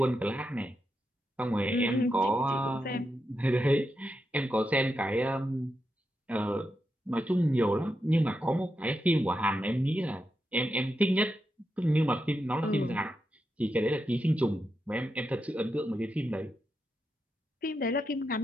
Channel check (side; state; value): both; normal; correlation 0.86